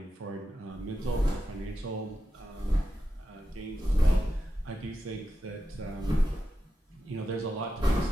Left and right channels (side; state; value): both; normal; correlation 0.89